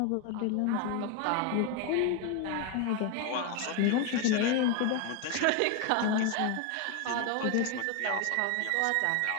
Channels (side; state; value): both; different; correlation 0.01